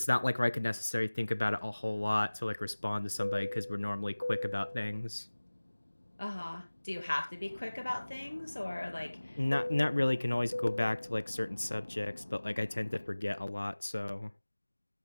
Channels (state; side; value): inverted; both; correlation -1.00